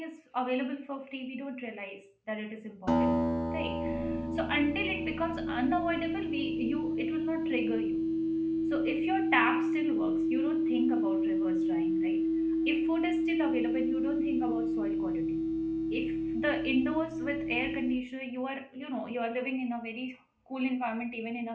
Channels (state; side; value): identical; both; correlation 1.00